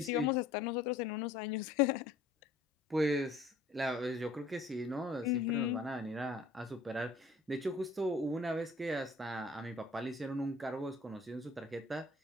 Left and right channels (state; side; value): quieter; right; 3.0 dB